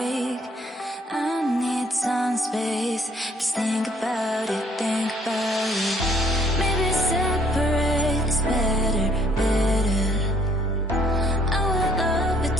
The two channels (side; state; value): both; normal; correlation 0.63